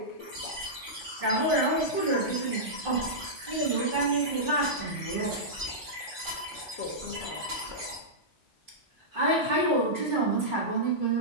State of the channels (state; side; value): normal; both; correlation -0.12